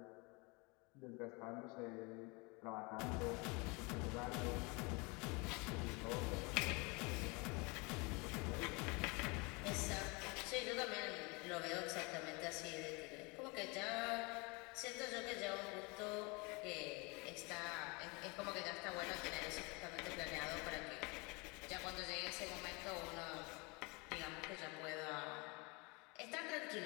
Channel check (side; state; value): right; quieter; 28.4 dB